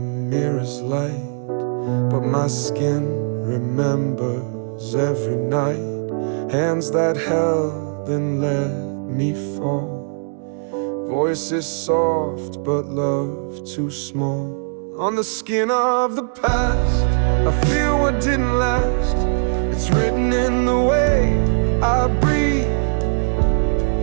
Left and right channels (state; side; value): silent; left; 65 dB below the other